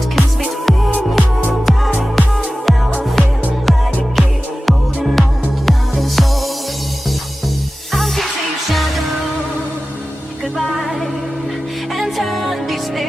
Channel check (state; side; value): normal; both; correlation 0.95